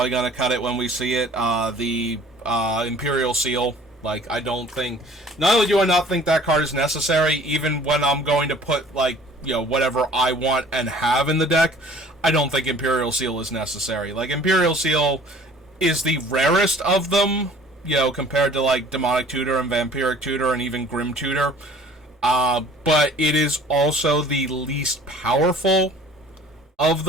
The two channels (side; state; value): both; normal; correlation 0.51